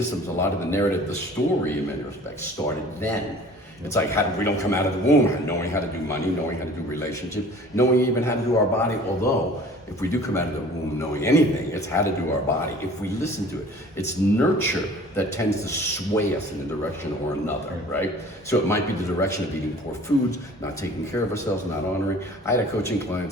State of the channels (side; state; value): both; normal; correlation 0.47